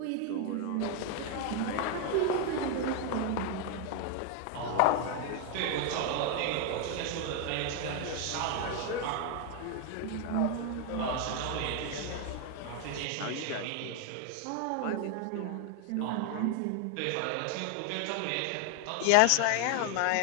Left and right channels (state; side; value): different; both; correlation 0.01